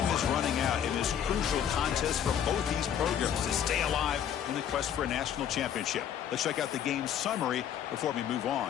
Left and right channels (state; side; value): quieter; right; 9.2 dB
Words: is running out in this crucial contest for both these programs to stay alive in the quest for a national championship. Let's check out the game summary before we move on.